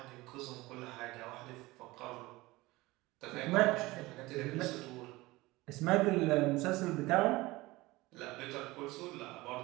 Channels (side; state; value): left; quieter; 20.5 dB